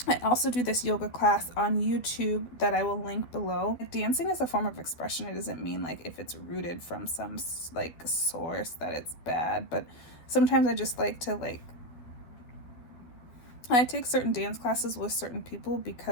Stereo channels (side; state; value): right; late; 12 ms